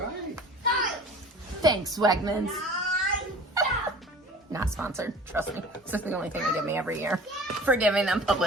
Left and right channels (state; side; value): normal; both; correlation 0.43